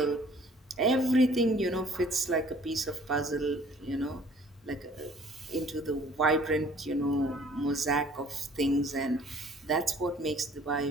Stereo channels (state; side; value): normal; both; correlation 0.55